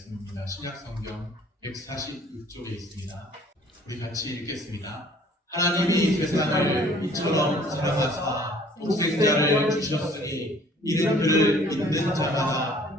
신약성경 146쪽에 있습니다. 우리 같이 읽겠습니다. 하나님이 세상을 이처럼 사랑하사 독생자를 주셨으니 이는 그를 믿는 자마다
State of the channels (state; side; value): normal; both; correlation 0.55